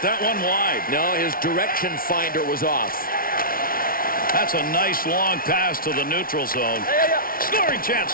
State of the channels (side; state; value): right; late; 0.42 ms